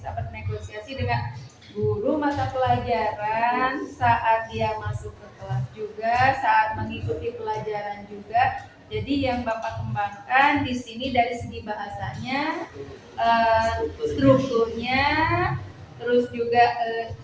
bernegosiasi dengan guru mata pelajaran saat dia masuk ke kelas juga, saat mengikuti pelajaran juga. Jadi yang Bapak kembangkan di sini dari segi bahasanya, strukturnya, terus juga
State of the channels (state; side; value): identical; both; correlation 1.00